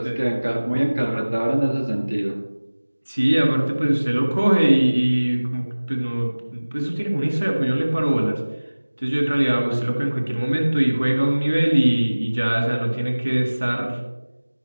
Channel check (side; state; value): both; inverted; correlation -1.00